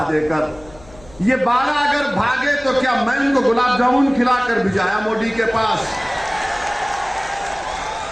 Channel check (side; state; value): left; noise; hum, 23 dB below the sound